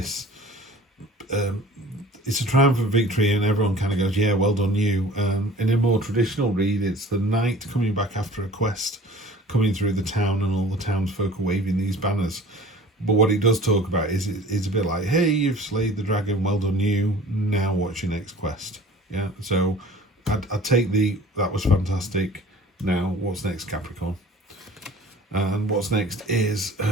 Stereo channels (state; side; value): normal; both; correlation 0.45